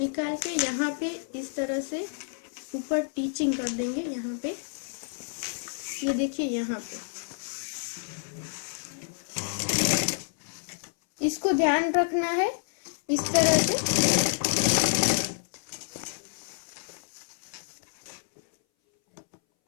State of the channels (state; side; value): silent; right; 59 dB below the other